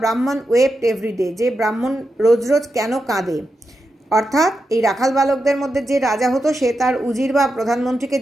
ওয়েপ্ট এভরিডে, যে ব্রাহ্মণ রোজ রোজ কেন কাঁদে। অর্থাৎ এই রাখাল বালকদের মধ্যে যে রাজা হতো সে তার উজির বা প্রধানমন্ত্রীকে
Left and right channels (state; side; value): normal; both; correlation 0.88